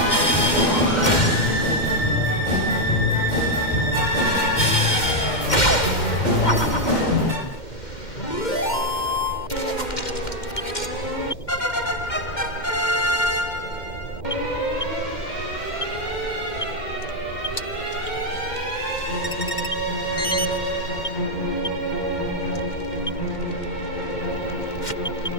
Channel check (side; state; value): right; late; 2.1 ms